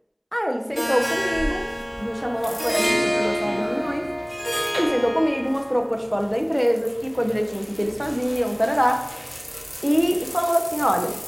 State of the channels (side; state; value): both; identical; correlation 1.00